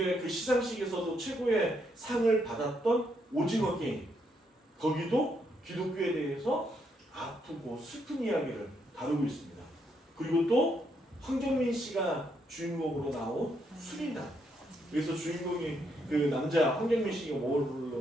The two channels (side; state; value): both; normal; correlation 0.76